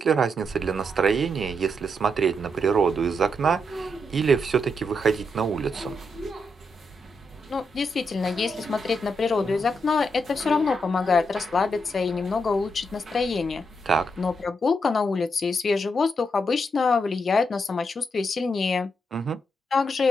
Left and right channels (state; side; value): normal; both; correlation 0.81